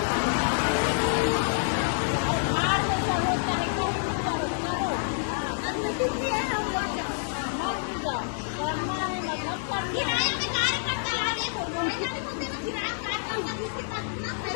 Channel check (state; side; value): silent; right; digital silence